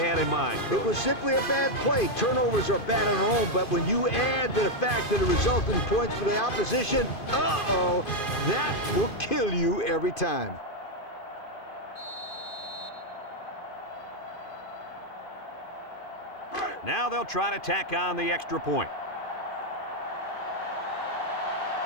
in mind, Coach. It was simply a bad play. Turnovers are bad on their own, but when you add the fact that it resulted in points for the opposition, that will kill you every time. Now they'll try to tack on the extra point.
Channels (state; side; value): late; right; 2.5 ms